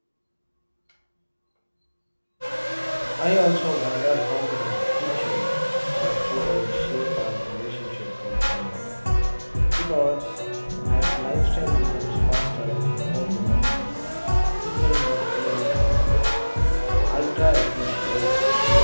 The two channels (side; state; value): both; inverted; correlation -1.00